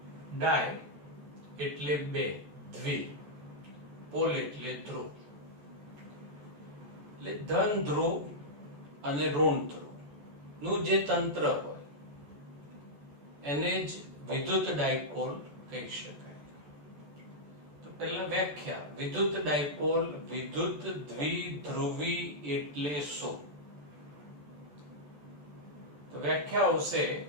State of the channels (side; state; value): left; late; 14 ms